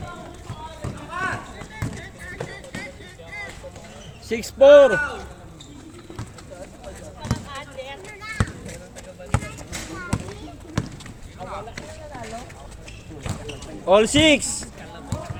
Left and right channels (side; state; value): both; identical; correlation 1.00